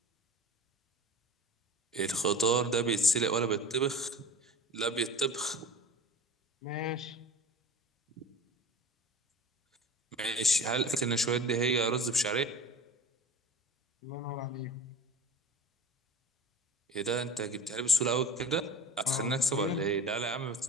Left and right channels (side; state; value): both; normal; correlation 0.37